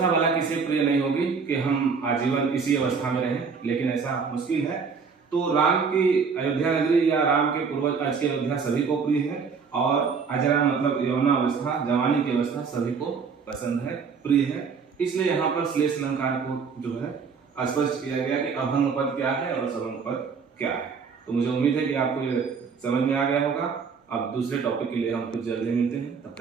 वाला किसी प्रिय नहीं होगी कि हम आजीवन इसी अवस्था में रहें, लेकिन ऐसा मुश्किल है। तो राम की अयोध्या नगरी या राम के पूर्वज आज की अयोध्या सभी को प्रिय है, और अजरा मतलब यौवनावस्था, जवानी की अवस्था सभी को पसंद है, प्रिय है। इसलिए यहाँ पर श्लेष अलंकार को जो है स्पष्ट किया गया कि अभंग पद क्या है और सभंग पद क्या है। तो मुझे उम्मीद है कि आपको ये समझ में आ गया होगा। अब दूसरे टॉपिक के लिए हम कुछ जल्दी मिलते हैं, तब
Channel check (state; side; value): quieter; left; 5.6 dB